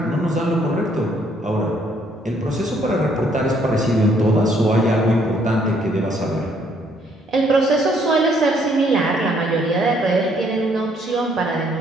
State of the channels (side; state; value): both; normal; correlation 0.67